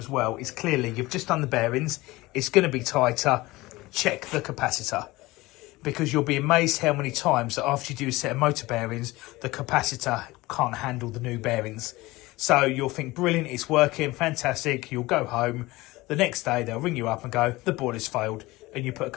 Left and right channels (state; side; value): quieter; right; 20.1 dB